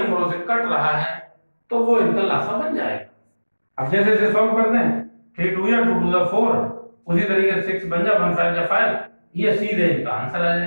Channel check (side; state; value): both; inverted; correlation -1.00